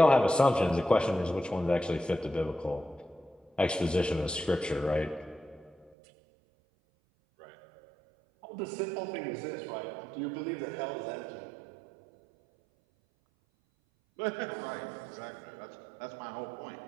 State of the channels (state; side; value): drops out; left; at 5.9 s